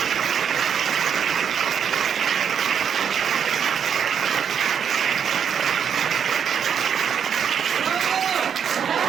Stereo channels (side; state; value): left; quieter; 7.8 dB